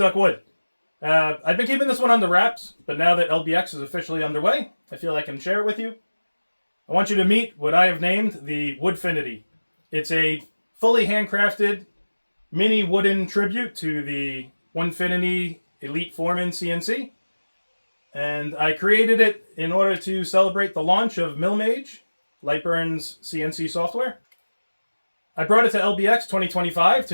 Wood. I've been keeping this one under wraps, but now that LBX is officially underway, I feel I can share it with you. I want you to meet what I have named the Woodfinity. It's a fully handcrafted mini wooden tribute to the Onefinity Elite Foreman CNC. And I created it in order to celebrate the launch of MillMage, LightBurn's CNC software. I brought it to LBX 2025 to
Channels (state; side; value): inverted; both; correlation -1.00